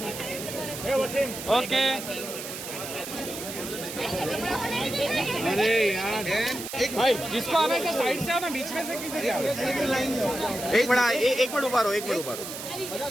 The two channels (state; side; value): noise; right; hiss, 8 dB below the sound